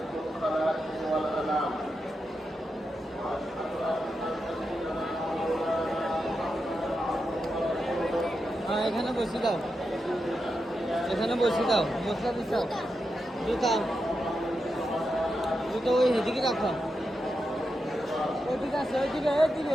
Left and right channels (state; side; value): normal; both; correlation 0.87